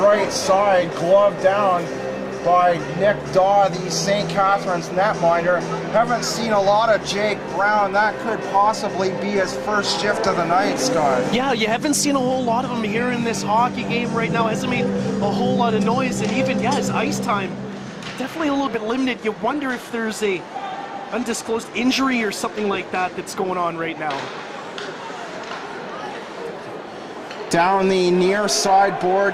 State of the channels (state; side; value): identical; both; correlation 1.00